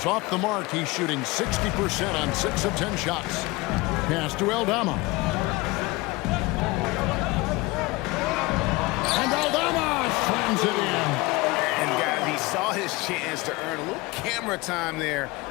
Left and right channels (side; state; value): right; quieter; 22.8 dB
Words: off the mark. He's shooting 60% on 6 of 10 shots. Pass to Aldama. And Aldama slams it in. And guys, he saw his chance to earn a little camera time there